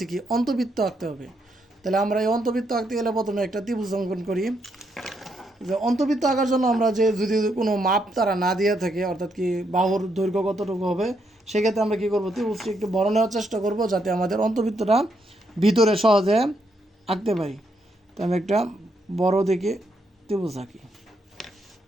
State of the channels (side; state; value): both; normal; correlation 0.77